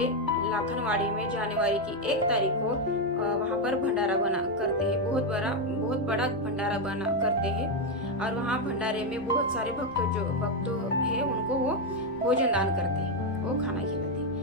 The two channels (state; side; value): normal; both; correlation 0.05